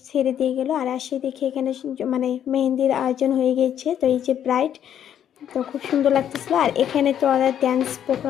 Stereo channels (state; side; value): quieter; right; 9.8 dB